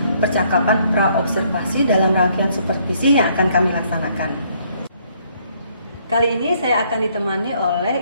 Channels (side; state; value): both; inverted; correlation -0.67